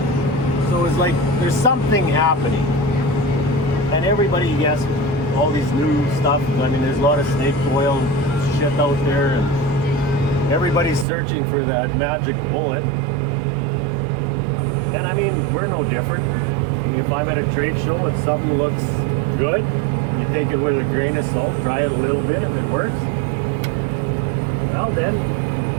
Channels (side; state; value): left; drops out; at 11.1 s